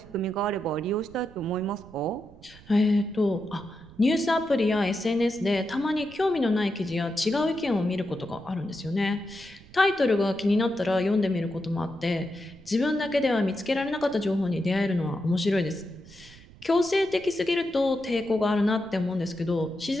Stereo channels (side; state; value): right; noise; rumble, 22 dB below the sound